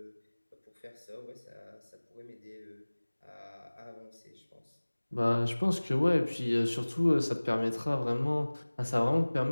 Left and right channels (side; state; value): both; inverted; correlation -1.00